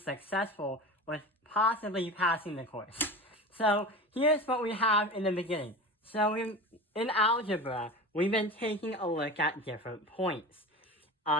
with possibly passing the course. So here's what we have in the beginning. So in algebra, we've been taking a look at different points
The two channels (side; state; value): both; normal; correlation 0.31